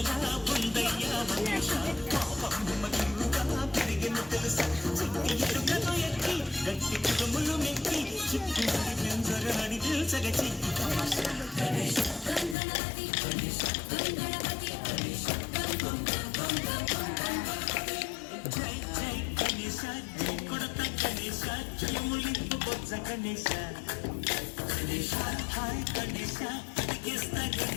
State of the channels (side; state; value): right; drops out; at 12.6 s